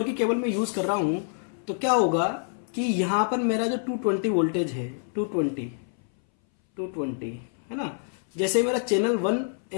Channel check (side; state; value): right; silent; 59 dB below the other